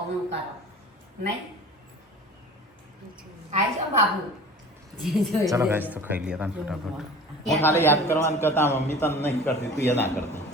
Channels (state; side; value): normal; both; correlation 0.41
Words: હું કરો નહીં આવી જાઓ બાબુ ચલો ગાઈસ તો ખાઈ લઈએ તાન ફટાફટ હું ખાલી યાદ કરવાનું કરતા મમ્મી તને નહીં કરતી તું એ ના કરતી